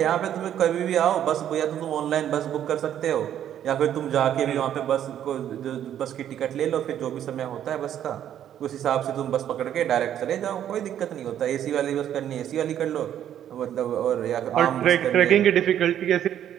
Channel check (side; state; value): left; quieter; 10.5 dB